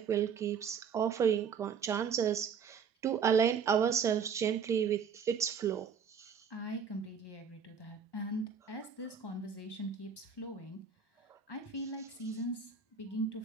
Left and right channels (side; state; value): left; quieter; 6.6 dB